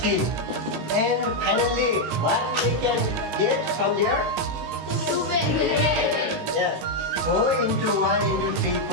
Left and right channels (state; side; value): late; left; 18 ms